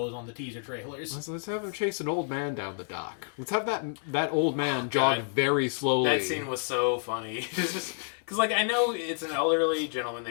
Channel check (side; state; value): right; silent; digital silence